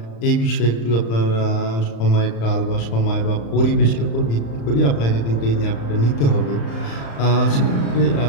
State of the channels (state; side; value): late; right; 35 ms